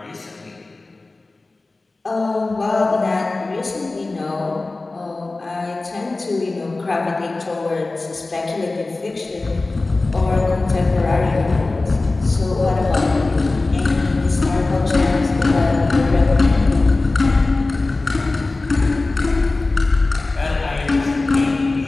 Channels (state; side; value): quieter; right; 3.3 dB